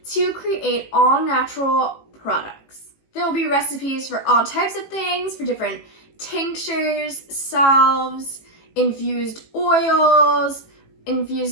to create all natural products. There will be recipes for all types of things, for different tinctures, salves, infused oils,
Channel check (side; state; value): right; late; 18 ms